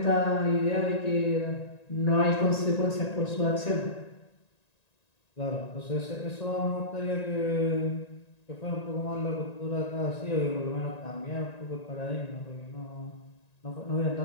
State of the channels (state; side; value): late; right; 1.9 ms